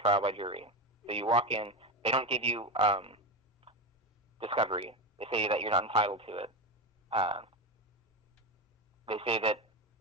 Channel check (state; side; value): normal; both; correlation 0.17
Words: by jury. So you walk in, they don't give you discovery. They say that you're not entitled to it. They say that